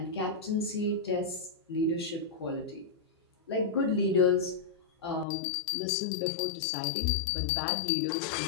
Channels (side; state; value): right; drops out; at 5.2 s